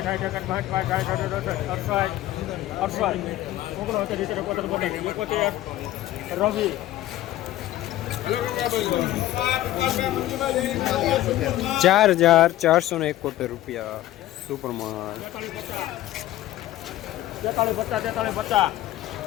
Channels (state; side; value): quieter; right; 14.6 dB